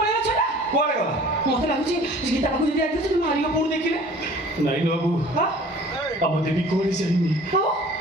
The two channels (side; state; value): both; normal; correlation 0.48